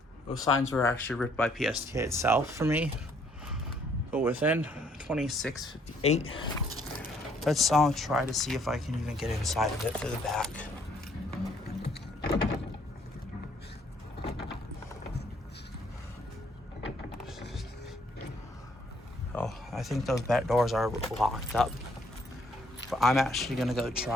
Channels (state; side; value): normal; both; correlation 0.66